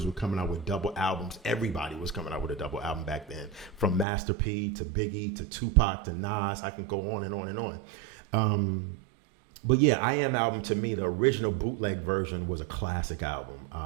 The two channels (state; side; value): drops out; left; at 4.0 s